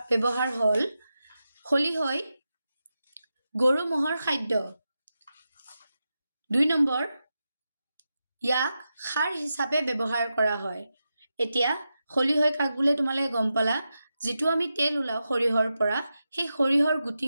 ব্যৱহাৰ হ'ল খলিহৈ গৰু ম'হৰ খাদ্য। 2 নম্বৰ ইয়াক সাৰ হিচাপে ব্যৱহাৰ কৰা হয়। এতিয়া খলিহৈ কাক বোলে তোমালোকে গম পালা। যিটো আমি তেল ওলাওঁ সৰিয়হৰ পৰা, সেই সৰিয়হৰ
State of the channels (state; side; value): inverted; both; correlation -0.90